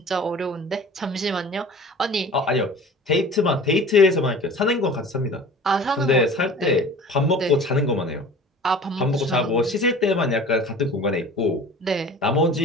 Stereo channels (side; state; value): both; normal; correlation 0.42